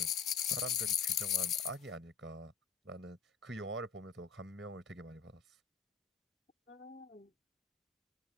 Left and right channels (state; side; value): quieter; right; 6.3 dB